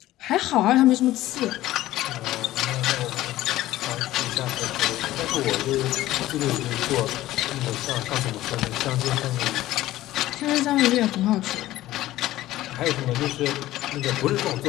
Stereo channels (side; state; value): right; quieter; 15.4 dB